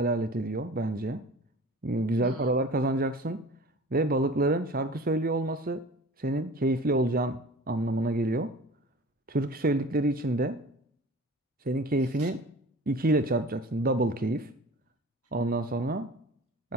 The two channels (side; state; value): both; normal; correlation 0.41